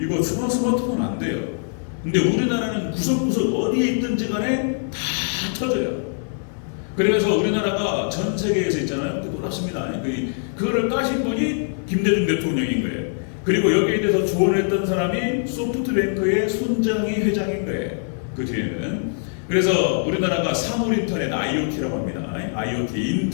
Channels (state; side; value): silent; right; 57 dB below the other